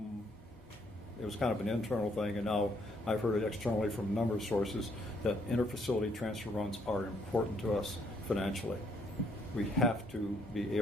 it was kind of an internal thing, and now I've heard it externally from a number of sources, that interfacility transfer runs are important to us financially. We have to be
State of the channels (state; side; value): normal; both; correlation 0.69